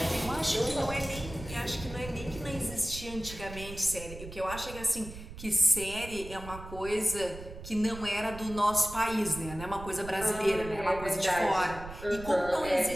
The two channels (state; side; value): noise; right; rumble, 12 dB below the sound